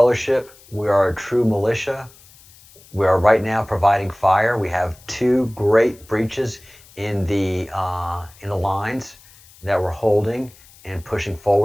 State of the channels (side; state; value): left; noise; hiss, 25 dB below the sound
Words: We are a true militia. We are right now providing fire. We have 2 great breaches in the lines that we're holding and pushing